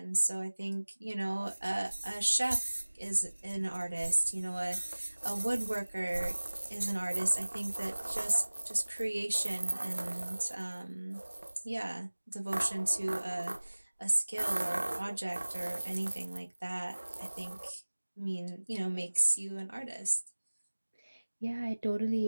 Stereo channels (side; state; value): both; inverted; correlation -1.00